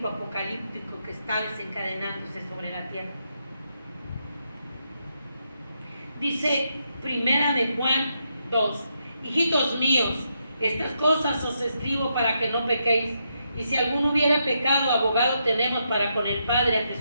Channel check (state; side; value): inverted; both; correlation -0.81